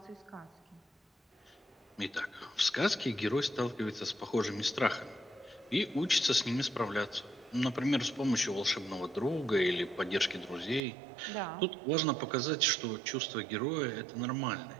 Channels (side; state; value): left; drops out; at 10.8 s